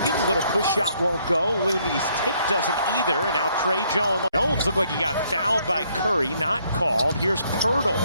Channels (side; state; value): both; inverted; correlation -0.69